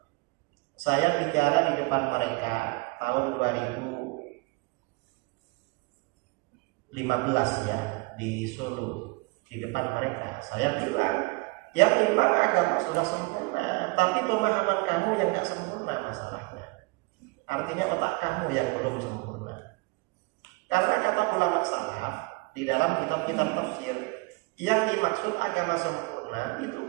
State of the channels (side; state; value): left; quieter; 27.2 dB